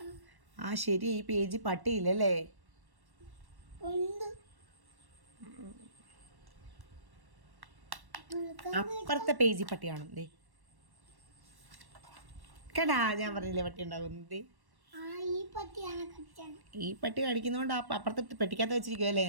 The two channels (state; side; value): late; left; 1.1 ms